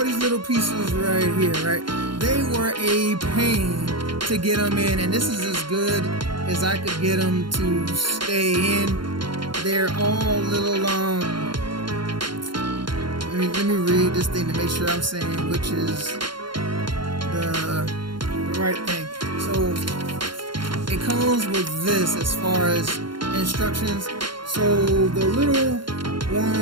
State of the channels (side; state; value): left; late; 0.72 ms